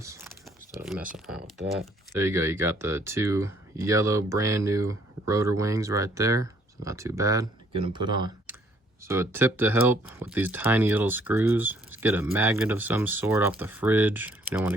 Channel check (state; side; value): normal; both; correlation 0.64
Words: Instead of messing around with that. There you go. You got the two yellow brand new rotor wings right there. So not too bad. Get them put on. So a tip to help with these tiny little screws is get a magnet of some sort off the fridge. You don't want